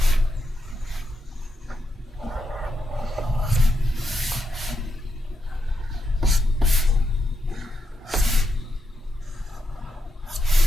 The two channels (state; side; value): normal; both; correlation 0.83